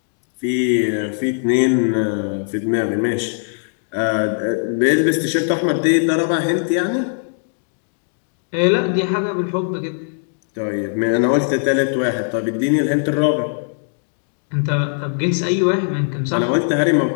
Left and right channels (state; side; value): silent; right; digital silence